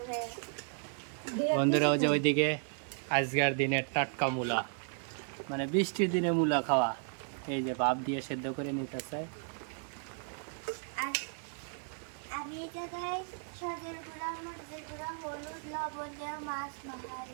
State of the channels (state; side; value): silent; left; 55 dB below the other